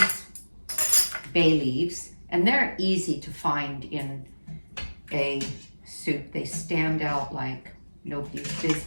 bay leaves, and they're easy to find in a soup. They stand out like nobody's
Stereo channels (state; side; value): inverted; both; correlation -1.00